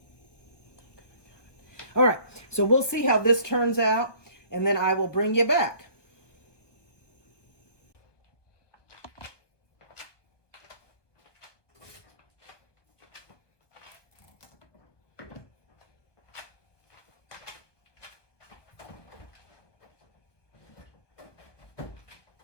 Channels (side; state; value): right; late; 1.2 ms